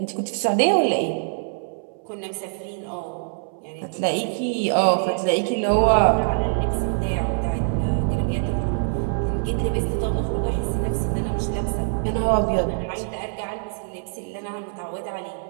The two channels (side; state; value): left; silent; 63 dB below the other